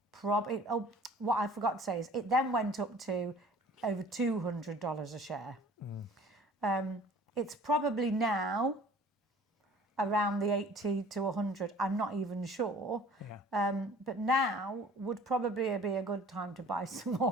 what I forgot to say is it then went up to over $200 a share. It's probably now around the 80 to 100. I'm not even sure. But now would probably be a good time to buy some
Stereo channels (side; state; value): both; normal; correlation 0.50